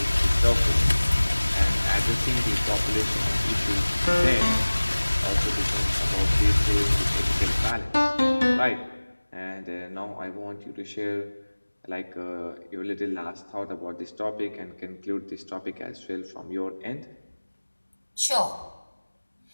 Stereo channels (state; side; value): inverted; both; correlation -1.00